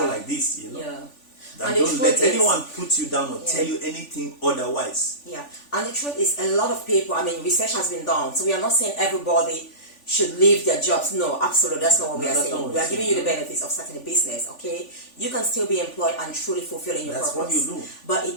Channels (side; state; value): right; late; 3.5 ms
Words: like this, And don't let anyone put you down or tell you anything otherwise. And the truth is, a lot of people, research has been done, so we are not saying everybody should leave their jobs. No, absolutely, that's not what we are saying. We are giving you the benefits of starting a business, okay? You can still be employed and truly fulfilling your purpose. That's what you do. But